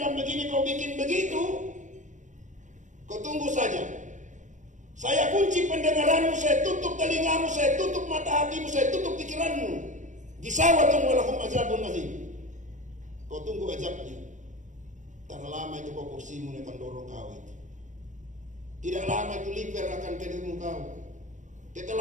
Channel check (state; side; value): late; left; 0.36 ms